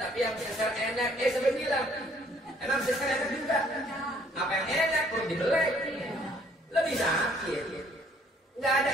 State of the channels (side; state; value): both; normal; correlation 0.62